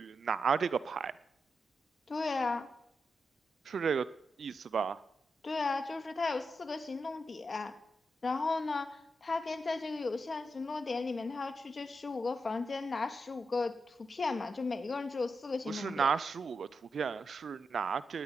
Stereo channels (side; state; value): both; normal; correlation 0.86